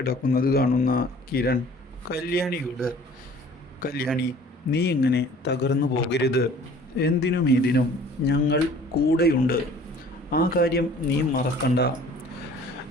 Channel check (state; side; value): normal; both; correlation 0.50